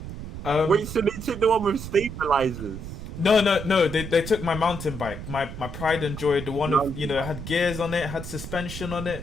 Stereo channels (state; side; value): noise; right; rumble, 9 dB below the sound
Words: Wait, so they took the one with stabilizers? No. They took my mountain bike, my pride and joy, the one of it had gears on it, had suspension on